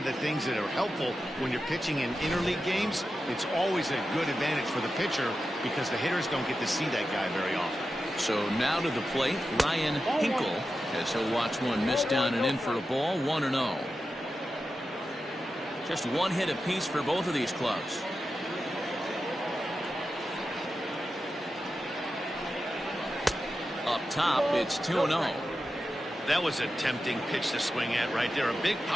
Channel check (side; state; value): both; normal; correlation 0.91